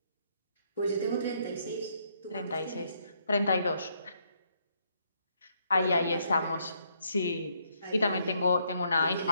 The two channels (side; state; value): both; inverted; correlation -0.72